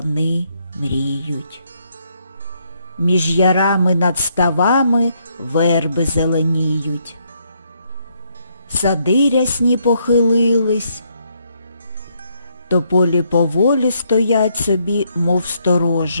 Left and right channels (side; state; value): both; inverted; correlation -0.73